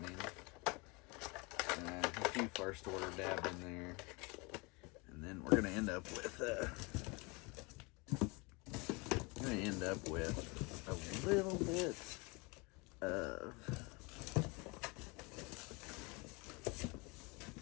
A few first order dabbed in there, and then we're gonna end up with a little bit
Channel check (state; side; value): quieter; right; 28.0 dB